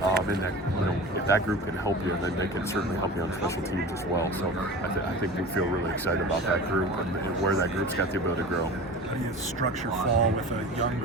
and that, you know, if that group can help you, then they can certainly help you on special teams as well. So I think we feel really excited about that group and where that group's got the ability to grow. How do you structure fall with a young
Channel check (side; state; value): both; normal; correlation 0.35